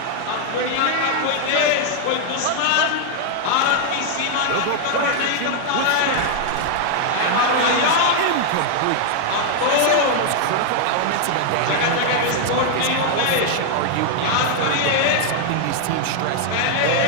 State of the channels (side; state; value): both; different; correlation 0.00